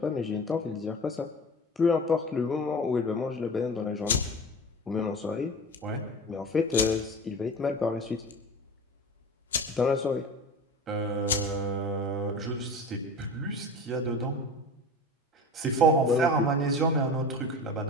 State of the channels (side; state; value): both; normal; correlation 0.34